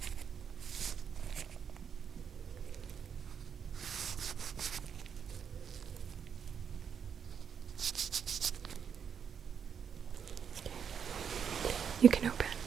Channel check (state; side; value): quieter; left; 7.4 dB